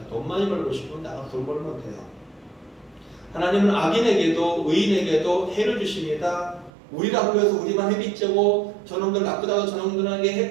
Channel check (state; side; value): drops out; left; at 6.7 s